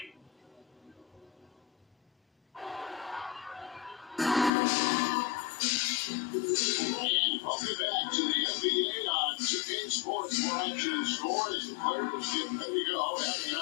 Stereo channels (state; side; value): drops out; right; at 4.5 s